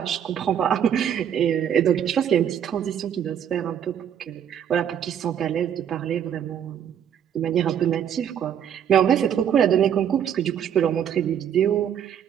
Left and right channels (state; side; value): quieter; left; 9.1 dB